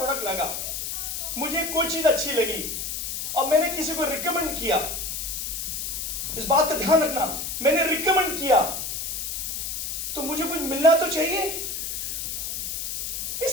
लगा, मुझे कोई चीज अच्छी लगी और मैंने किसी को रिकमेंड किया, इस बात का ध्यान रखना, मैंने रिकमेंड किया तो मुझे कुछ मिलना तो चाहिए। इस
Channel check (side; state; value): left; noise; hiss, 4 dB below the sound